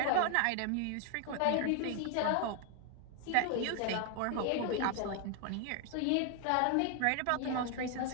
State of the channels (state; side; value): different; both; correlation 0.00